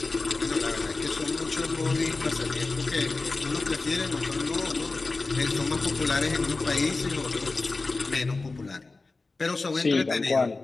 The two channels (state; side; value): quieter; right; 3.6 dB